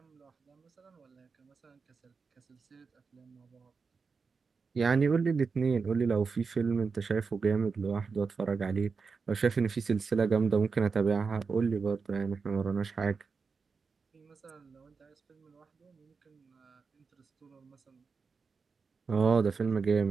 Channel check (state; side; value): quieter; left; 5.0 dB